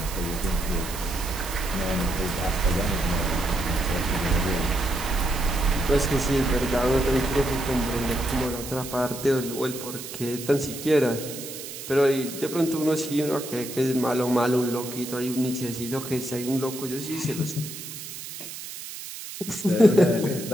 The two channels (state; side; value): noise; right; hiss, 10 dB below the sound